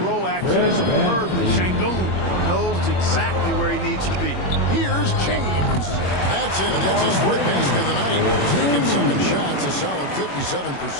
roll action superbly. Şengün knows exactly where he needs to be. Here's James. That's it, and that's his fourth basket of the night. Taking 7 shots, a solid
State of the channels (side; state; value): right; late; 21 ms